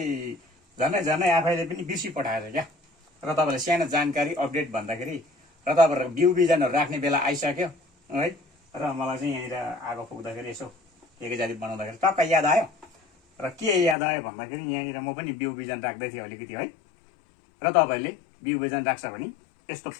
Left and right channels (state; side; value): drops out; right; at 14.0 s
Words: झनै आफैले पनि बिर्सी पठाएर क्या र तपाईँलाई सानो जानकारी अपडेट भन्दाखेरि र तपाईँहरूको बिउ बिजनहरू राख्ने बेला आइसक्यो है र मलाई चाहिँ यहाँनिर आगो फुक्दाखेरि यसो के जाति बनाउँदाखेरि टक्क याद आयो र के याद आयो भन्दाखेरि यहाँनिर म पनि बिउ बिजन राख्दै थिएँ अलिकति है र तपाईँहरूले बिउ बिजन राख्छ भने यस्तो